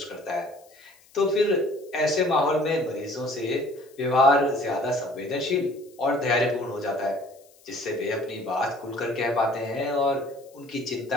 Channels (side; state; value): left; noise; hiss, 28 dB below the sound